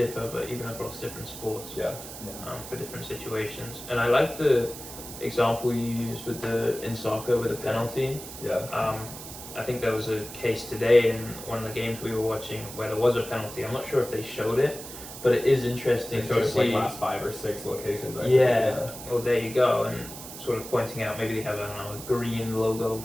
but even across different sports, Yeah. for different situations. And I like the example you used with in soccer with a penalty. Yeah. I think there was a case today in one of the games we were watching where there was a penalty. I'm not sure if they showed it, but it is interesting They showed to it see. like last 5 or 6 locations. I think. Yeah. Well, there you go, and sort of pointing out maybe they have, I don't know, a green logo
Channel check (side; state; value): right; noise; hiss, 12 dB below the sound